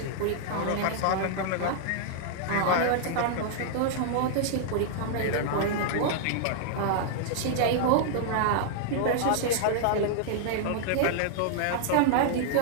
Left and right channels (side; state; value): both; different; correlation -0.01